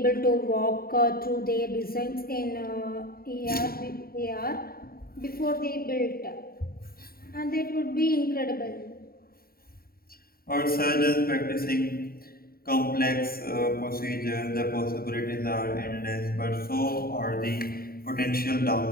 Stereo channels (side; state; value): right; late; 0.43 ms